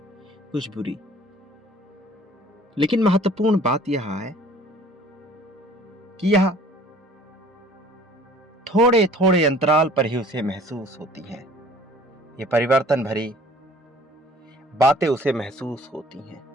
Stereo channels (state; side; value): normal; both; correlation 0.52